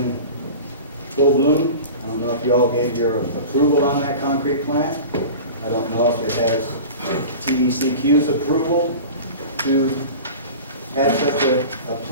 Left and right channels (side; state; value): both; inverted; correlation -0.35